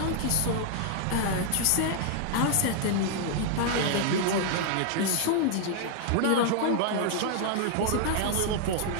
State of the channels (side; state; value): both; different; correlation 0.00